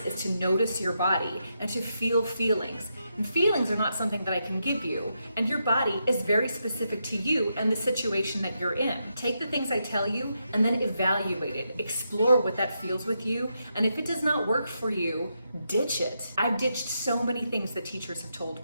is to notice your body and to feel feelings. And feelings are not something that I can give you, and your body is very specific to you and the situation that you're in. Take the things I tell you and then evaluate it. Explore what that feels with you, and if it does not work for you, ditch it. I've ditched so many things that teachers have told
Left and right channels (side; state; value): both; inverted; correlation -0.83